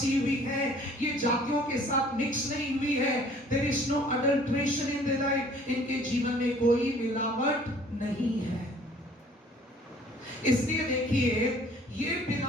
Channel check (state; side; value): normal; both; correlation 0.54